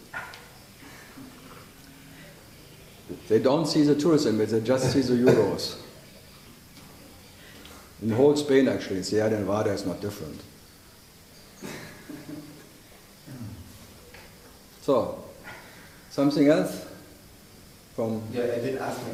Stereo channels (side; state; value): both; identical; correlation 1.00